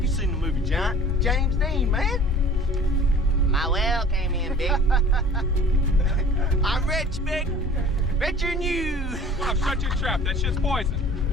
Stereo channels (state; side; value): normal; both; correlation 0.46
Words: seen the movie Giant? James Dean, man! My well came in, big. I'm rich, big. Richer than you. Come on, shut your trap. That shit's